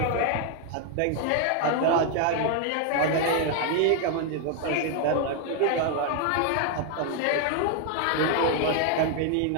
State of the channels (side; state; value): both; different; correlation 0.00